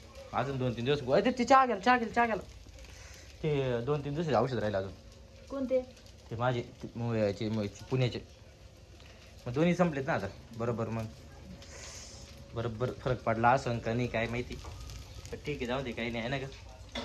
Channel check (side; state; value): both; identical; correlation 1.00